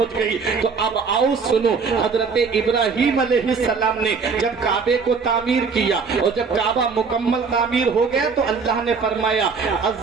گئی. تو اب آؤ سنو, حضرت ابراہیم علیہ السلام نے جب کعبے کو تعمیر کیا اور جب کعبہ مکمل تعمیر ہو گیا تو اللہ نے فرمایا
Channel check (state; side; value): quieter; left; 5.2 dB